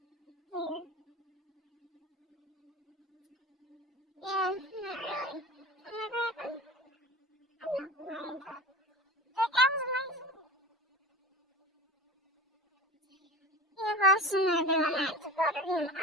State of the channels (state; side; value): normal; both; correlation 0.34